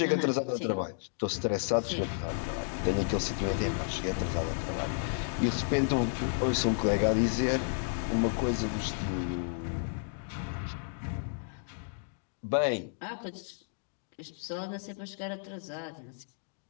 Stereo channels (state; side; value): silent; right; digital silence